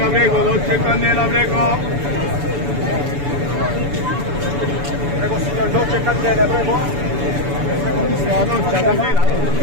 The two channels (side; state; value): left; late; 7.0 ms